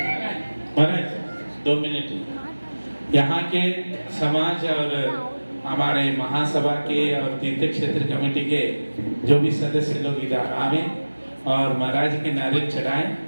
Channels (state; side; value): inverted; both; correlation -1.00